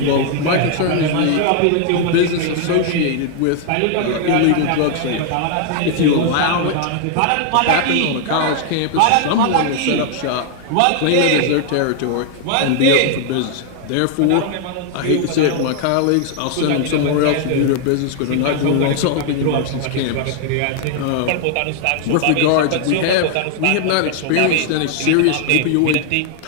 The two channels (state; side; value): different; both; correlation 0.00